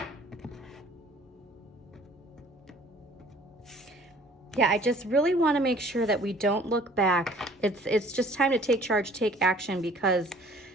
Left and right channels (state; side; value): normal; both; correlation 0.54